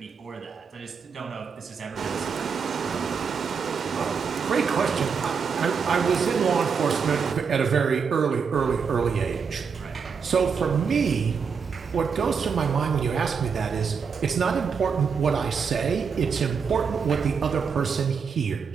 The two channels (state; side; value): quieter; left; 6.0 dB